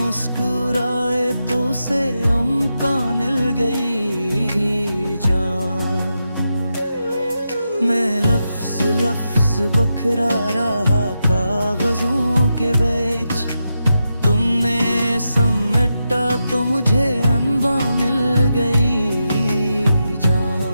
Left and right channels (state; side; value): inverted; both; correlation -0.87